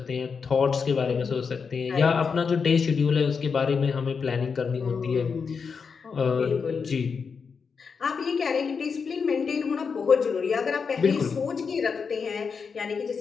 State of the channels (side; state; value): right; quieter; 5.6 dB